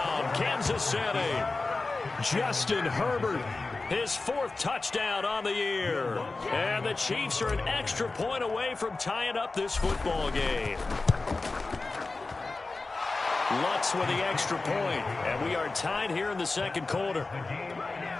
Kansas City. Justin Herbert, his 4th touchdown on the year. And the Chiefs are an extra point away from tying up this football game. Lutz with the extra point, and we are tied here in the second quarter.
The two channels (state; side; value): quieter; right; 3.6 dB